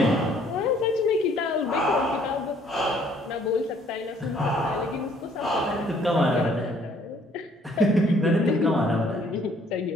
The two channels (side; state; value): both; normal; correlation 0.62